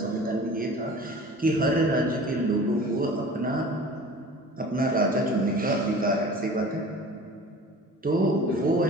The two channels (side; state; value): both; normal; correlation 0.42